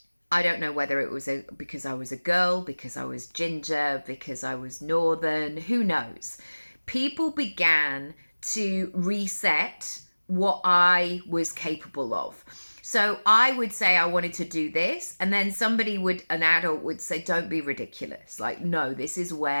I don't know whether it was because I was a girl, because I was ginger, because I was northern, who knows. People began to reset what I was capable of. So I would say I wanted to do this, and then an adult would say, don't be ridiculous. Like, no, this is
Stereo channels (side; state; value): both; inverted; correlation -1.00